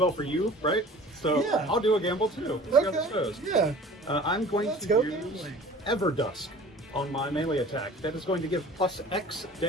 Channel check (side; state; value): both; normal; correlation 0.45